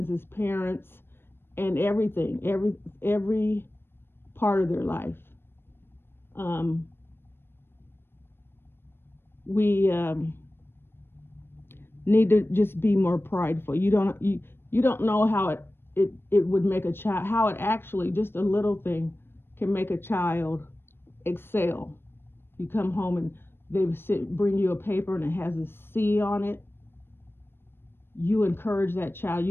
parents, and everything, every part of their life. Um, we need to just be more prideful. You don't know how it would make a child, how it actually, just a little thing can make a child excel. You come home and bring you a paper and it has a C on it. You encourage that child.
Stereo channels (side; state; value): right; late; 0.11 ms